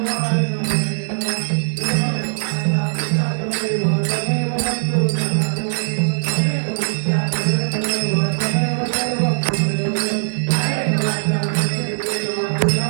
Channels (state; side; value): silent; left; digital silence